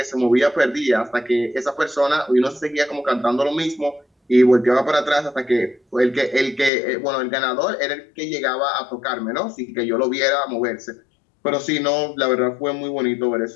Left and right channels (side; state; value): right; drops out; at 6.7 s